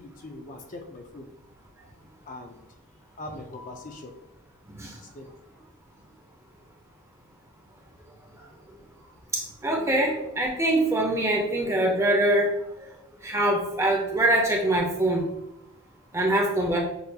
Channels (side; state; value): both; normal; correlation 0.43